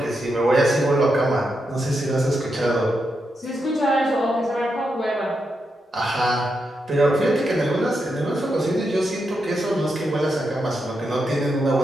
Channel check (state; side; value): normal; both; correlation 0.84